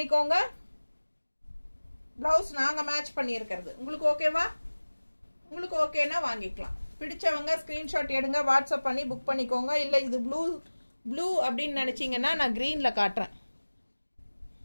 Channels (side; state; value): both; inverted; correlation -1.00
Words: ப்ளவுஸ் நாங்கள் மேட்ச் பண்ணியிருக்கிறது உங்களுக்கு ஓகேவா? உங்களுக்கு ஓகேனா வாங்கிக்கலாம். பிடிச்சவங்க ஸ்கிரீன்ஷாட் எடுங்க, வாட்ஸ்அப் பண்ணி புக் பண்ணிக்கோங்க. இல்லை இது ப்ளூ அப்படின்னு நினச்சிங்கன்னா நான் க்ரீனில் காட்டுறேன்.